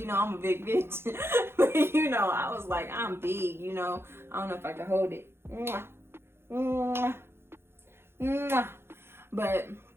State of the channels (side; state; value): left; late; 0.12 ms